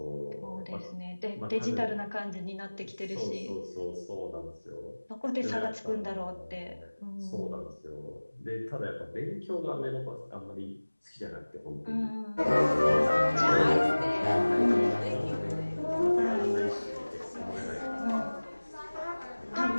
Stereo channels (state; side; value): inverted; both; correlation -1.00